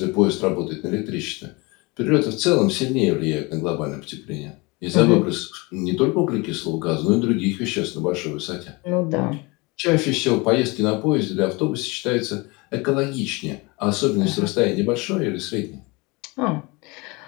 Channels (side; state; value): right; quieter; 26.0 dB